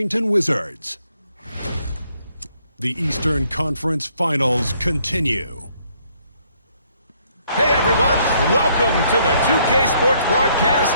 Wizards. The Eastern Conference Finals continue. Hey everyone, welcome to the 2K Sports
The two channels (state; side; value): inverted; both; correlation -0.68